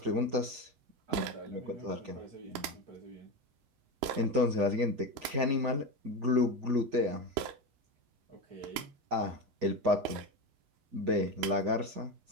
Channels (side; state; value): left; late; 8.5 ms